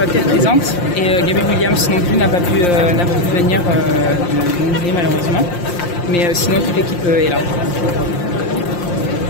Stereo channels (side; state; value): right; late; 5.7 ms